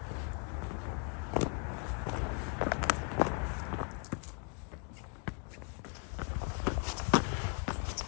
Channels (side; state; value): right; quieter; 36.8 dB